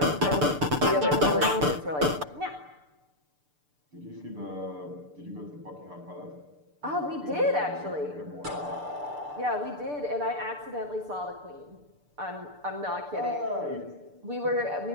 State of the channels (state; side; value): late; left; 6.8 ms